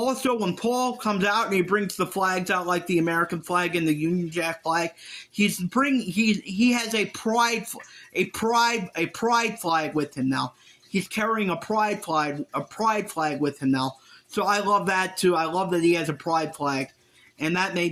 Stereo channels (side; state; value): both; identical; correlation 1.00